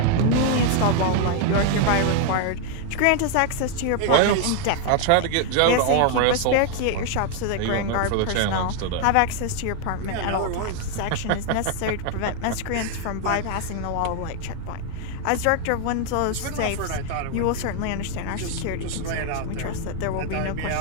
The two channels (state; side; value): different; both; correlation 0.00